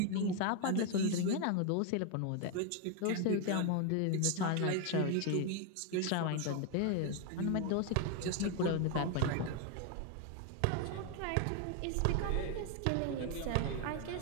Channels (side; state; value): both; different; correlation 0.01